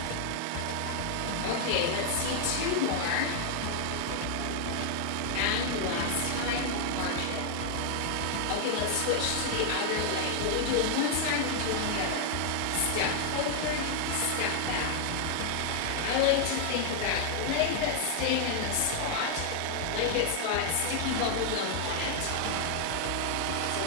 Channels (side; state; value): both; different; correlation 0.00